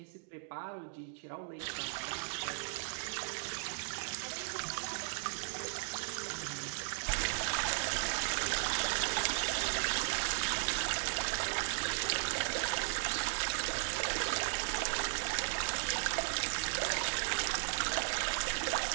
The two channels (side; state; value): left; silent; digital silence